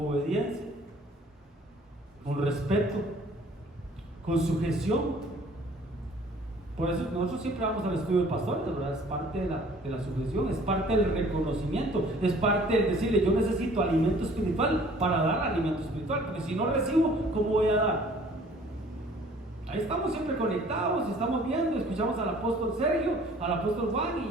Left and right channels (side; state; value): both; normal; correlation 0.54